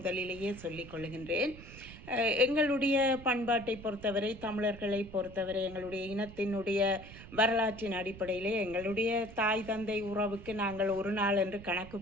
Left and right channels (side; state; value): right; noise; rumble, 16 dB below the sound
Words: சொல்லிக் கொள்கின்றேன். எங்களுடைய பண்பாட்டை பொறுத்தவரை, தமிழர்களை பொறுத்தவரை, எங்களுடைய இனத்தினுடைய வரலாற்றின் அடிப்படையிலே எங்களுடைய தாய் தந்தை உறவுக்கு நாங்கள் ஒரு நாள் என்று கணக்கு